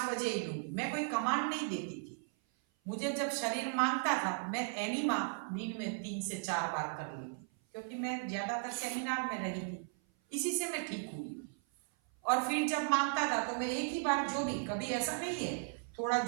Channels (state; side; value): silent; left; 54 dB below the other